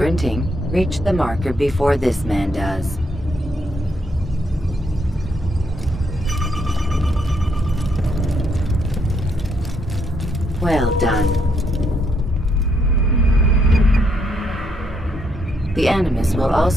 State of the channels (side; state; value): both; normal; correlation 0.74